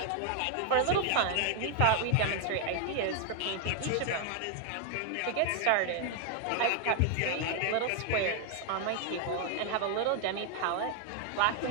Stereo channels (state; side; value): different; both; correlation 0.01